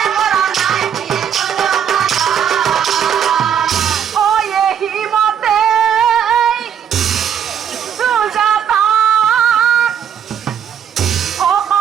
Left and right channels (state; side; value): quieter; left; 8.5 dB